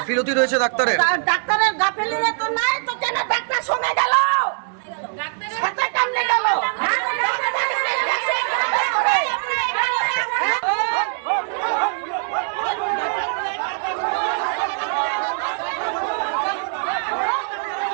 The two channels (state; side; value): silent; left; digital silence